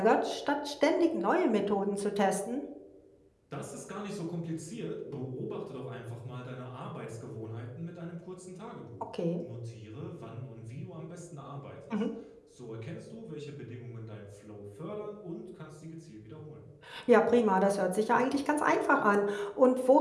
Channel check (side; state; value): both; identical; correlation 1.00